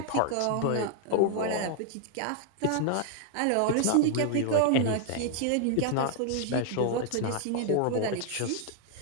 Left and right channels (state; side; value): different; both; correlation 0.00